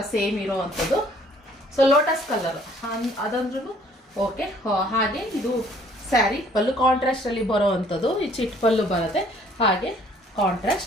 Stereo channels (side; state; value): both; normal; correlation 0.59